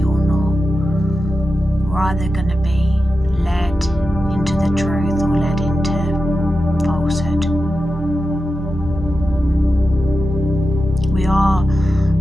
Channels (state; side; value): normal; both; correlation 0.91